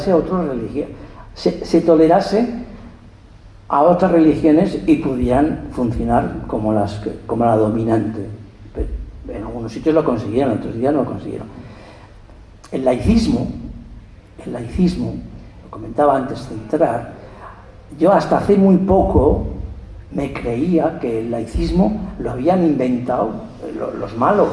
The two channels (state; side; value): identical; both; correlation 1.00